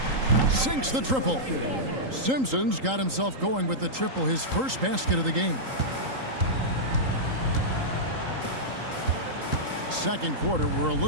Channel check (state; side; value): late; left; 3.8 ms